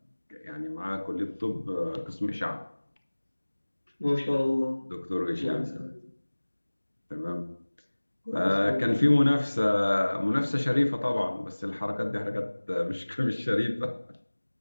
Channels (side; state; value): both; inverted; correlation -1.00